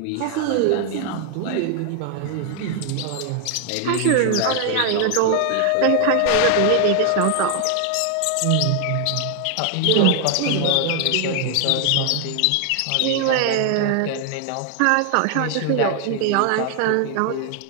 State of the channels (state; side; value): different; both; correlation 0.00